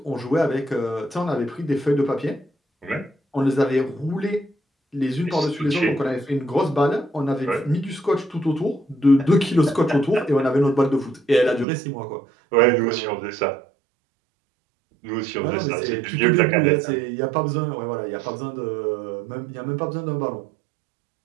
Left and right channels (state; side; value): drops out; left; at 11.7 s